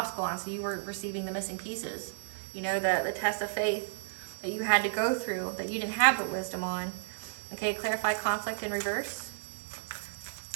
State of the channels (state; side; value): silent; left; digital silence